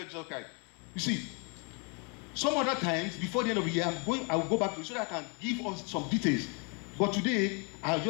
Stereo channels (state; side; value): quieter; right; 35.9 dB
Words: Jesus Christ. You see, some other times before the end of the year, I will go back to it so that I can give us some details. But today, I'll